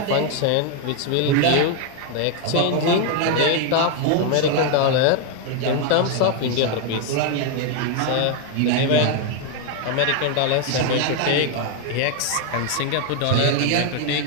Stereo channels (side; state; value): both; different; correlation 0.01